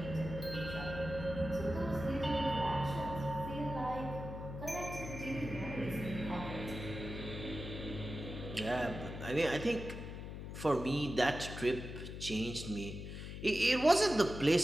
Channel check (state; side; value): noise; left; hum, 8 dB below the sound